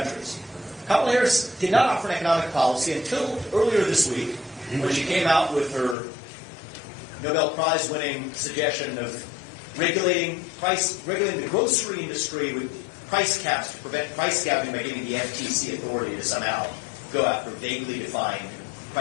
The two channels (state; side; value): drops out; right; at 6.0 s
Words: Kamala Harris did not offer an economic policy until earlier this week, when she came out with her Nobel Prize-winning suggestion of regulating the grocery industry with price caps to prevent price gouging by giving the FTC authority to somehow go after vaguely defined